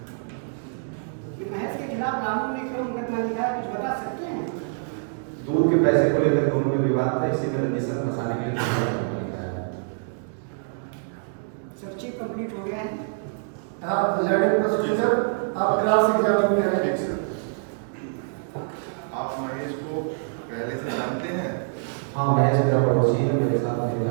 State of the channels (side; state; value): left; silent; digital silence